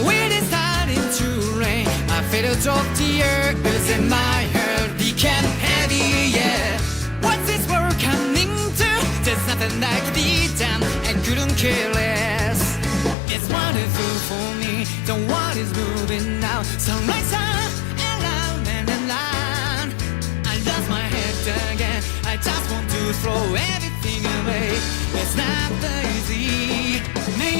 it is starting to rain, I feel a drop tears in my heart, became heavy, yeah. What's this world coming to? There's nothing that could be done, I couldn't care less. It's wonderful for me, the world is moving now. Sunrise on, around and around. I lost my head again, I just want to throw everything away. It's not easy.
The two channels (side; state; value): right; drops out; at 13.2 s